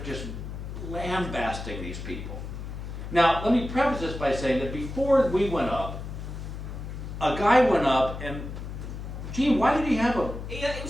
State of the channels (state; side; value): noise; left; hum, 8 dB below the sound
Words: just lambasting these people. Now, let me preface this by saying that before we went up, a guy went up and, Gene, why did he have a... He